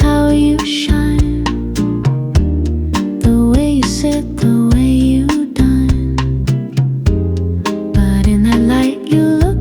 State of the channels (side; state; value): both; identical; correlation 1.00